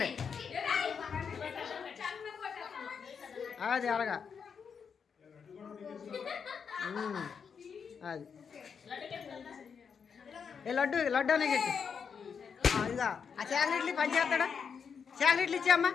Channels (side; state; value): right; quieter; 6.5 dB